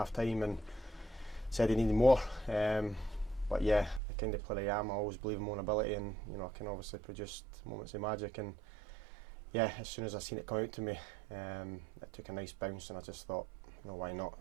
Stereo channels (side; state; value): left; drops out; at 4.0 s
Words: time and said he needed more. But yeah, the kind of player I am, I always believe in my own ability, and I can obviously produce moments of magic. And yeah, as soon as I seen it come out to me, it took a nice bounce, and I just thought, why not?